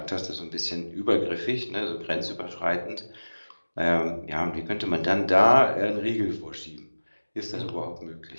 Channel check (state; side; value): inverted; both; correlation -1.00